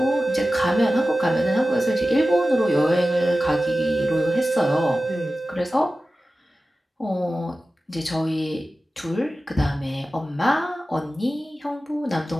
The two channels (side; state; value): both; normal; correlation 0.95